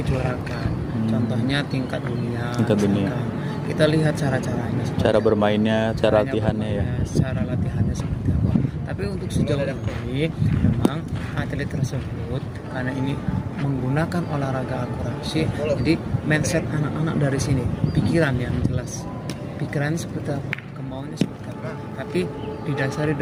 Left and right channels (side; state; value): both; identical; correlation 1.00